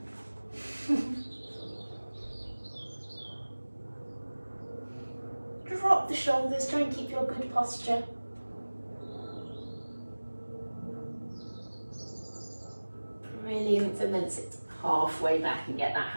Drop the shoulders, try and keep your good posture. Brilliant, and then sit halfway back and get that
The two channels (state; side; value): inverted; both; correlation -1.00